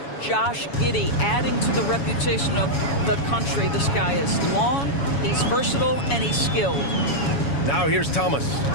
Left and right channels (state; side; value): late; right; 7.1 ms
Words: Josh Giddey adding to the reputation of the country. This guy is long, he's versatile, and he's skilled. Now here's Thomas.